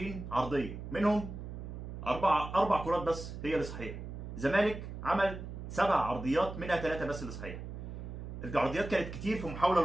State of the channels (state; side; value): noise; right; hum, 9 dB below the sound